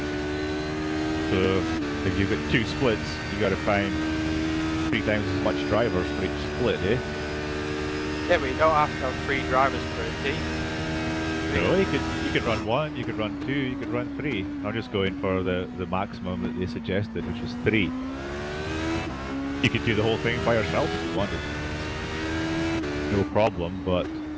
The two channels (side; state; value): both; identical; correlation 1.00